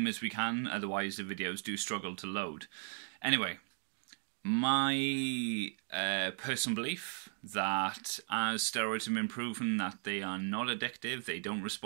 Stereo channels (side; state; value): left; silent; 53 dB below the other